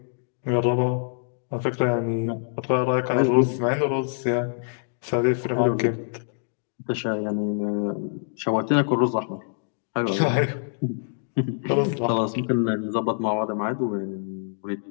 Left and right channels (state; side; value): silent; right; digital silence